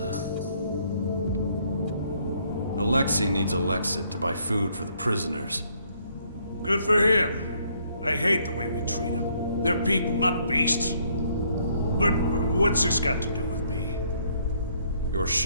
Alexei needs Alexit to buy food for the prisoners. Good for him. I hate the way we treat them. They're people, not beasts. But what's this got to do with me? Your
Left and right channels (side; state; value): both; inverted; correlation -0.68